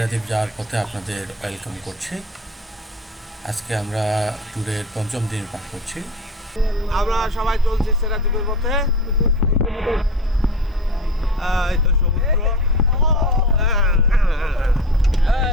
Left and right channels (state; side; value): normal; both; correlation 0.31